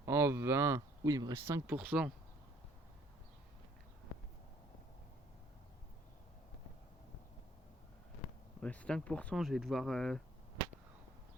En 20. Oui, il me reste 5%. Il me reste 5%, je vais devoir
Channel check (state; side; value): normal; both; correlation 0.60